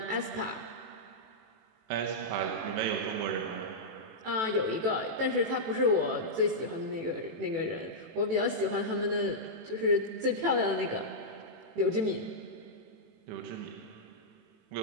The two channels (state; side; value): late; left; 18 ms